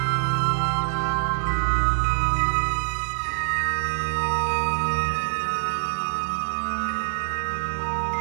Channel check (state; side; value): silent; left; 59 dB below the other